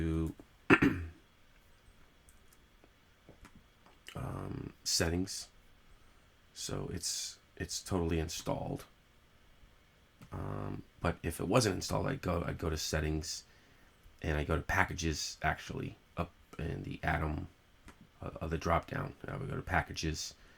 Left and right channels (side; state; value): both; identical; correlation 1.00